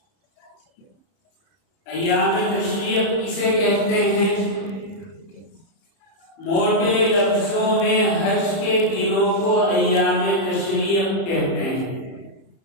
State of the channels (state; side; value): late; right; 30 ms